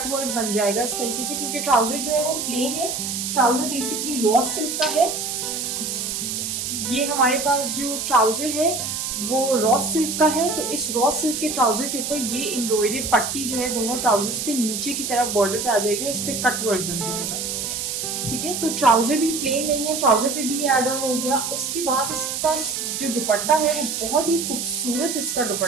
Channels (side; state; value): right; noise; hiss, 3 dB below the sound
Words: वर्क बन जाएगा इस तरीके से क्योंकि ट्राउजर जो है वो प्लेन है. ट्राउजर बेसिकली रॉ सिल्क का है. ये हमारे पास जो ट्राउजर है वो रॉ सिल्क का है. तो इस रॉ सिल्क के ट्राउजर के ऊपर ये एम्ब्रॉयडर्ड पट्टी जो है दोनों ट्राउजर्स पे नीचे की तरफ बॉर्डर पे आ जाएगी और इस पे कट वर्क बन जाएगा, ठीक है. तो ट्राउजर भी प्लेन नहीं है, ट्राउजर पे भी ऐड ऑन हो गया. उसके बाद इसका जो दुपट्टा है वो बहुत ही खूबसूरत इसका